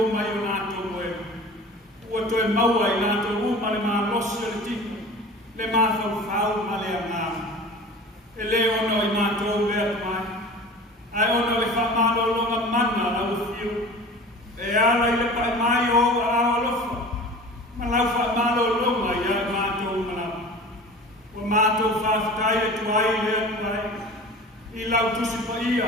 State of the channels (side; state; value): both; normal; correlation 0.39